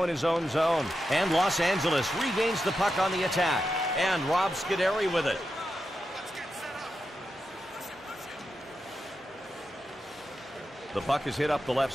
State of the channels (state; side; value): normal; both; correlation 0.88